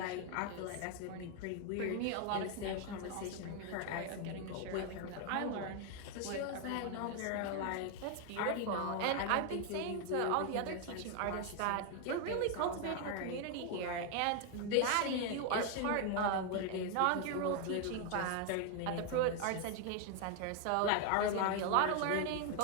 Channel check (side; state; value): both; different; correlation 0.01